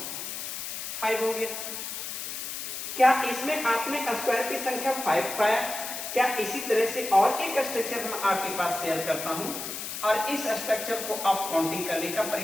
5 हो गया। क्या इसमें आपने स्क्वायर की संख्या 5 पाया? क्या इसी तरह से और एक स्ट्रक्चर मैं आपके पास शेयर करता हूं और इस स्ट्रक्चर को आप काउंटिंग करने का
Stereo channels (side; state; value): left; noise; hiss, 6 dB below the sound